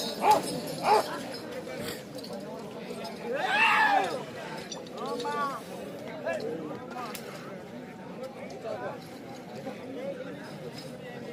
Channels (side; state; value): both; identical; correlation 1.00